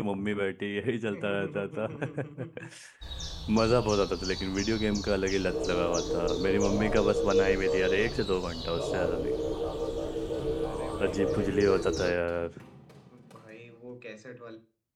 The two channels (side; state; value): both; identical; correlation 1.00